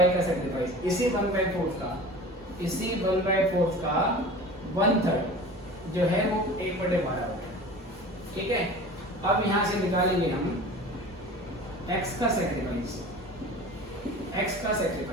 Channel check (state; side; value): normal; both; correlation 0.38